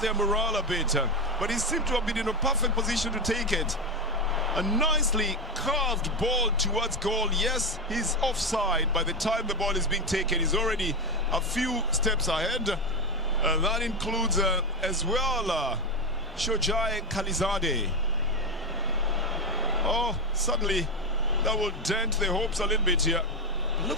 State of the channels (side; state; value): both; normal; correlation 0.11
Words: their morale a bit. But he seemed to have been in a perfect position to take it. A nicely curved ball towards goal. Yes, he's offside. By the time the ball is being taken, he's already a few steps ahead. That includes as well Shojai Khalizadeh. Oh, suddenly that will dent their hopes a little bit here. Look